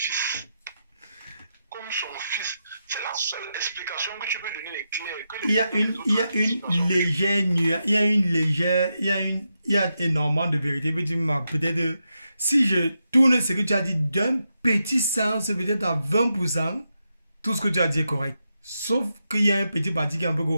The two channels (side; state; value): both; inverted; correlation -0.86